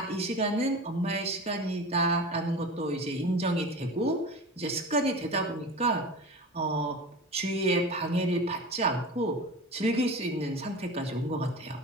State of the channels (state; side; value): normal; both; correlation 0.32